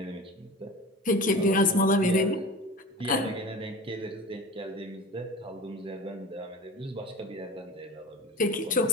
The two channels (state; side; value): normal; both; correlation 0.34